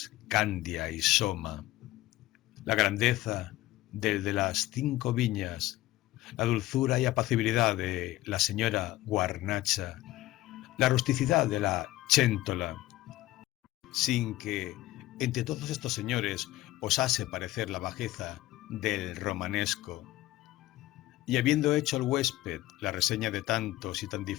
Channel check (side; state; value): right; quieter; 17.0 dB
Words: Candia y Soma, la grandeza del de las 5 viñas, la dulzura y apacibilidad de la señora Guarnacha, la rusticidad de la Chéntola, sin que entre todos estos señores osase parecer la bajeza del romanesco. Y habiendo hecho el huésped la reseña de tantos y tan